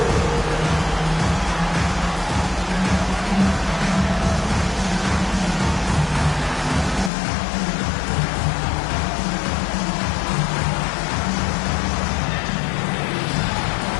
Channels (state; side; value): drops out; right; at 7.1 s